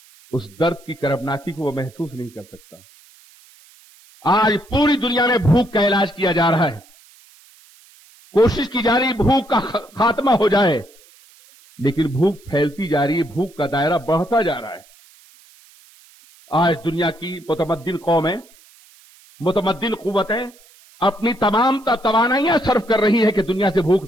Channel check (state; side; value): noise; right; hiss, 27 dB below the sound